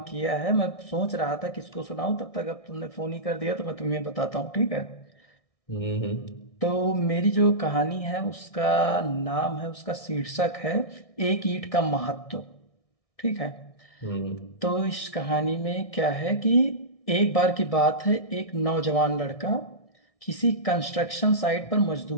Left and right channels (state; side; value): late; right; 1.6 ms